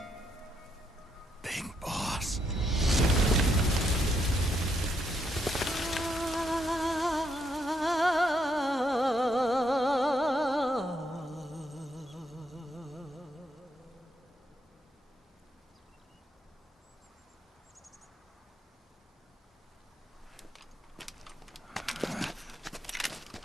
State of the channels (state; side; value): normal; both; correlation 0.76